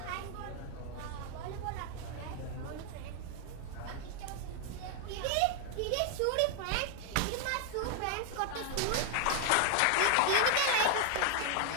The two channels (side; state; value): both; different; correlation 0.00